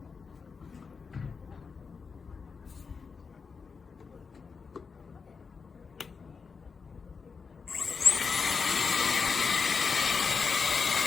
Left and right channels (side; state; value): right; quieter; 5.2 dB